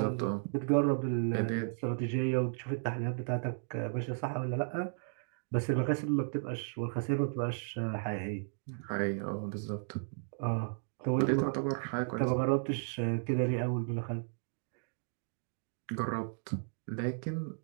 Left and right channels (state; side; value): silent; left; digital silence